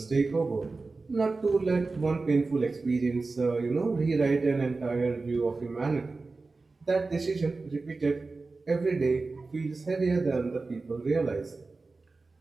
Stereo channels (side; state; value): left; quieter; 3.8 dB